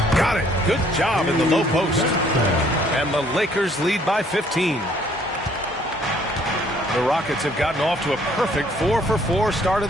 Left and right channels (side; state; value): both; normal; correlation 0.62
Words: Got it. Good job in the low post. And the Lakers lead by 15. The Rockets have gotten off to a perfect 4-for-4 start of